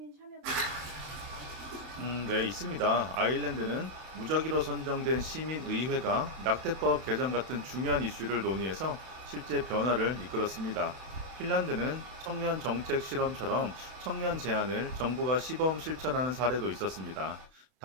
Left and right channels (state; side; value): late; left; 31 ms